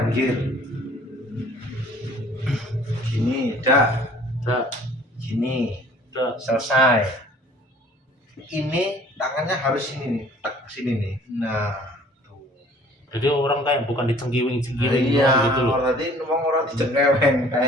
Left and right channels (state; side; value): normal; both; correlation 0.53